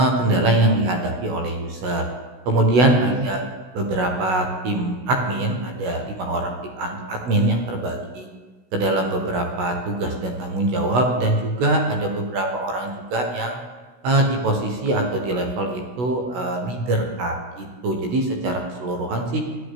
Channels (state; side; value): late; left; 16 ms